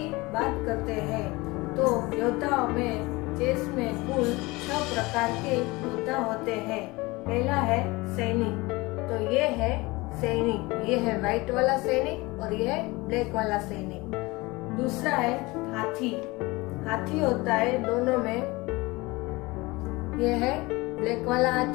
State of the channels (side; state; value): right; quieter; 22.8 dB